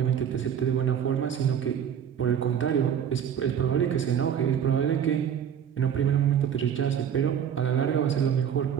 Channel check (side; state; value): left; quieter; 8.6 dB